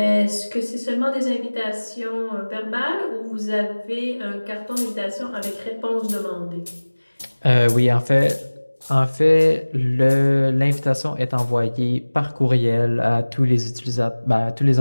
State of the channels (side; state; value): both; inverted; correlation -1.00